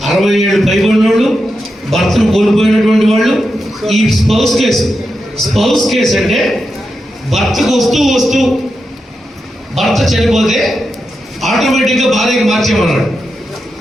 67 పైబడిన వాళ్ళు, భర్తను కోల్పోయినటువంటి వాళ్ళు. ఈ స్పౌస్ కేసు అంటే భర్తకు వస్తూ భర్త చనిపోతే ఆటోమేటిక్గా భార్యకి మార్చేమన్నాడు.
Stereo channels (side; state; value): both; normal; correlation 0.88